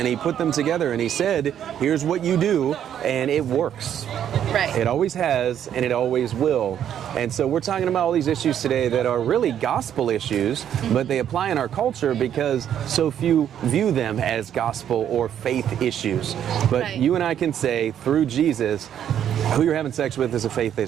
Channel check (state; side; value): quieter; left; 9.8 dB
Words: he put them together, and he said, here's what you do, and it works. It always has, and it always will. And so we're talking about all these issues today that are really gospel issues, but they apply in our culture because so few view them as gospel or faith issues. But you and I can say, through Jesus, who you're having sex with is a faith